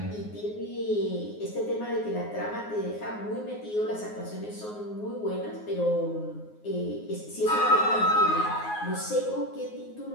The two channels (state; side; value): late; right; 9.5 ms